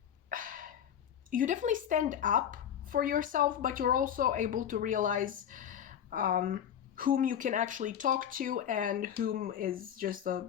You definitely stand up for yourself, but you're also able to realize whom you can actually talk to and whom is just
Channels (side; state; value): right; quieter; 9.3 dB